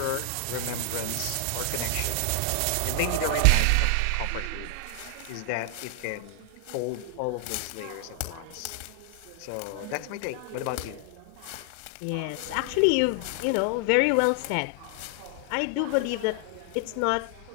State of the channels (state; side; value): different; both; correlation 0.00